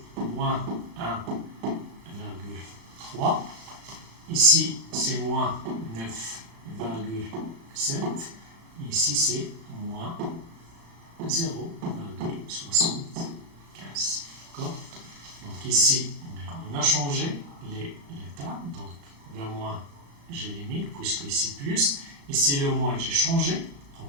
moins 1,3. Ici, c'est moins 9,7. Ici, c'est moins 0,75. D'accord? Donc ici, on a changé l'état. Donc le moins, j'élimine, puisque ici plus. Ici le moins, j'ai changé.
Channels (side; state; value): left; late; 35 ms